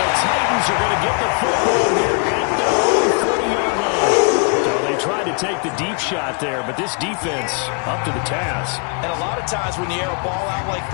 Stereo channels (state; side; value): quieter; right; 38.3 dB